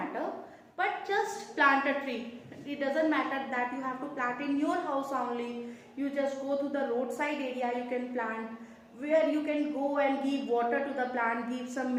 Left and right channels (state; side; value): identical; both; correlation 1.00